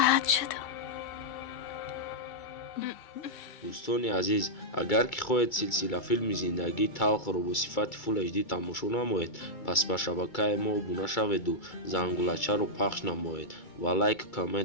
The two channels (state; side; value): late; right; 2.3 ms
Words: شدم. دوستان عزیز، اگر که خواهید سلسله فیلم زندگی تلخ رو با صفت فول HD تماشا نمایید، پس به شبکه ما ابونه شوید و زنگولچه رو پخش نمایید و لایک